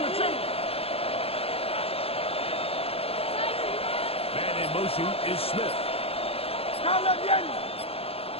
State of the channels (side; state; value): right; late; 0.29 ms